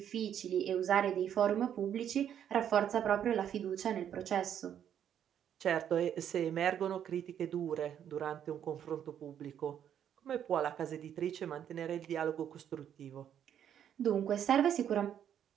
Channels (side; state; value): left; quieter; 9.5 dB